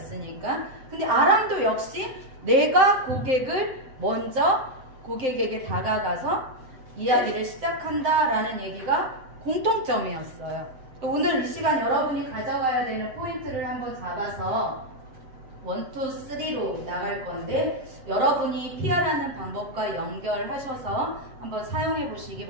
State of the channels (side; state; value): left; late; 7.7 ms